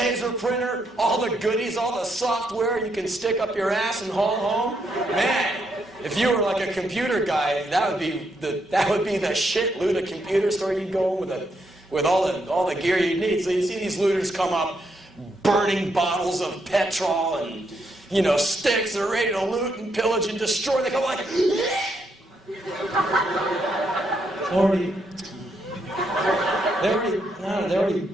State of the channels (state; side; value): normal; both; correlation 0.77